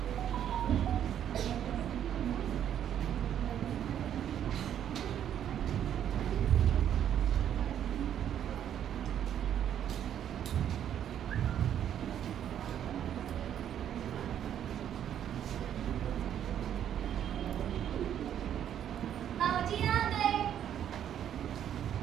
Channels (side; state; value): left; quieter; 9.9 dB